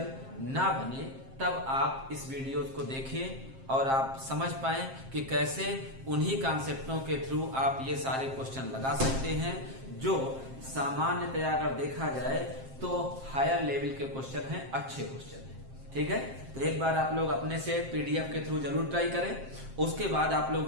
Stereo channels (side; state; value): left; late; 7.5 ms